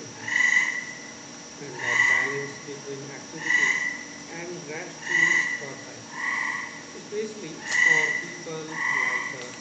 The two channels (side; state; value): both; identical; correlation 1.00